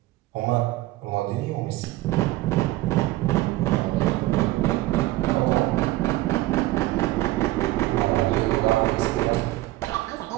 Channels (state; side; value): quieter; left; 17.9 dB